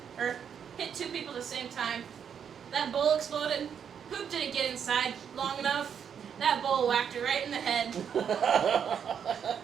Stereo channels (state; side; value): quieter; left; 7.8 dB